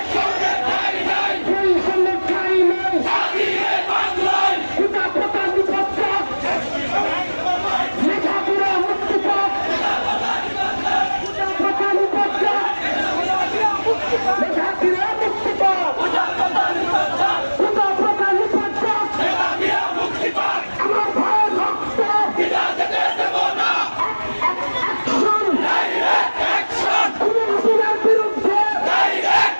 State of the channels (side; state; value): both; inverted; correlation -1.00